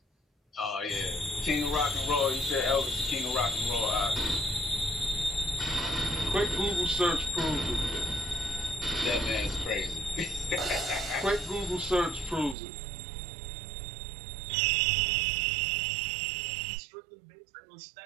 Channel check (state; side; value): drops out; left; at 12.6 s